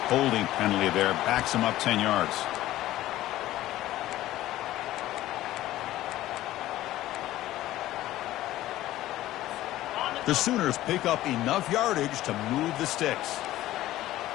holding penalty there. Backs him up 10 yards. The Sooners pick up enough yardage to move the sticks.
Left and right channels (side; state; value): right; quieter; 15.1 dB